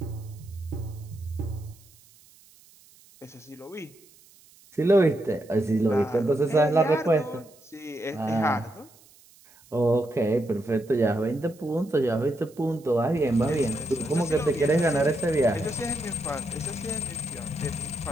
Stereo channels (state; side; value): noise; right; hiss, 27 dB below the sound